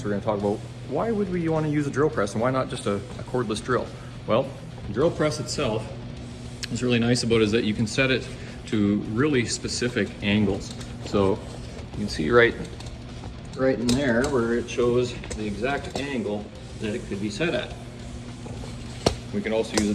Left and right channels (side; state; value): both; identical; correlation 1.00